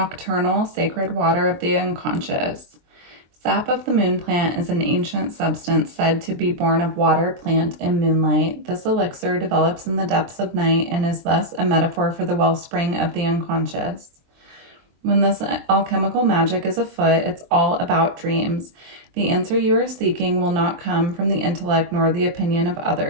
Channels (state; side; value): late; left; 23 ms